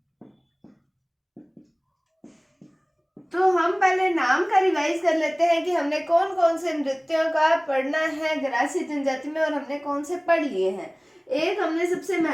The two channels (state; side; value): identical; both; correlation 1.00